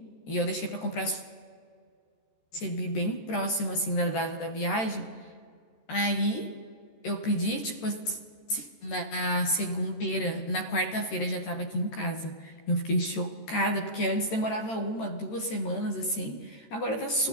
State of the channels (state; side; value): late; right; 13 ms